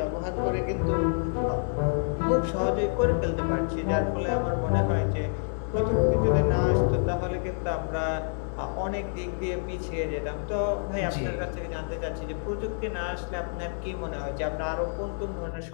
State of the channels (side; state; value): right; silent; digital silence